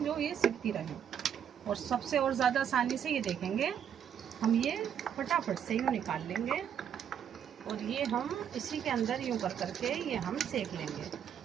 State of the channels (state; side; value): quieter; left; 8.8 dB